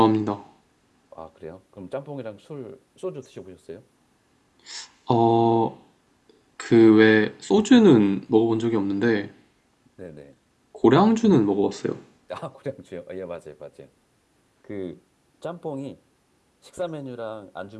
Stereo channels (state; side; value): identical; both; correlation 1.00